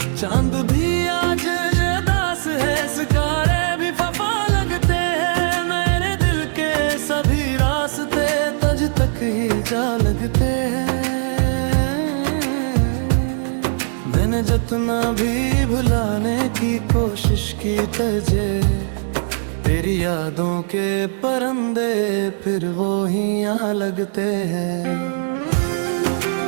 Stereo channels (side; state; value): left; silent; digital silence